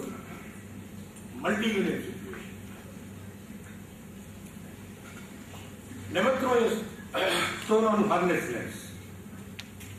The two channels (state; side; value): identical; both; correlation 1.00